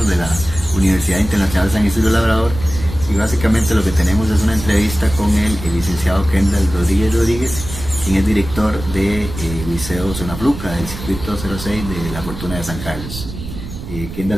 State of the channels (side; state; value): right; noise; rumble, 10 dB below the sound